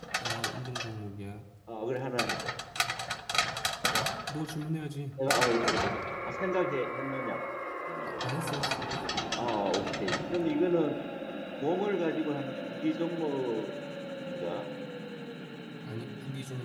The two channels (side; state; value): both; identical; correlation 1.00